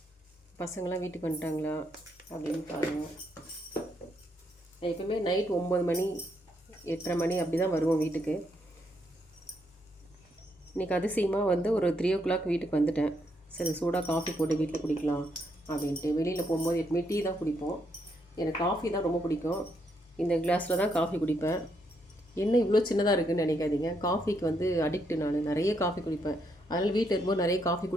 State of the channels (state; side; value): normal; both; correlation 0.76